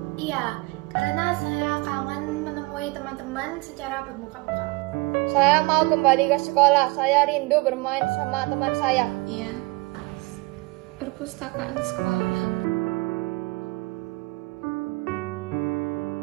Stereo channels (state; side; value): quieter; left; 24.7 dB